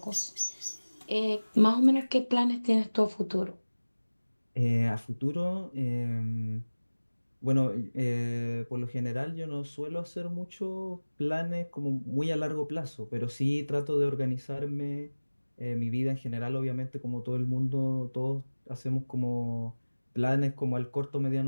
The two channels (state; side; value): inverted; both; correlation -1.00